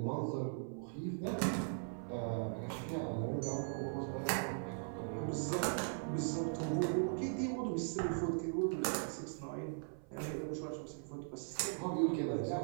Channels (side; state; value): left; silent; 51 dB below the other